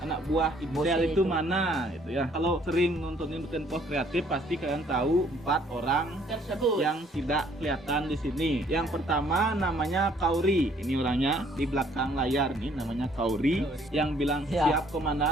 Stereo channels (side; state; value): both; normal; correlation 0.62